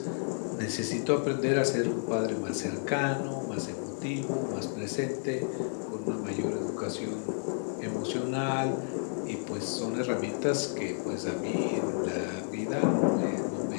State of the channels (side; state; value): right; silent; digital silence